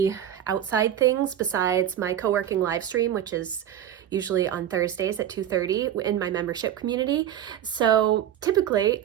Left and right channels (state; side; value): quieter; left; 10.6 dB